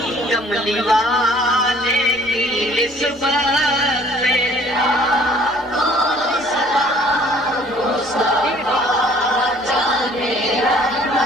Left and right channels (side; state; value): both; normal; correlation 0.55